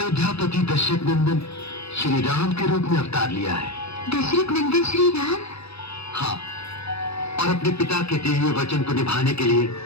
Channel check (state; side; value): late; right; 0.78 ms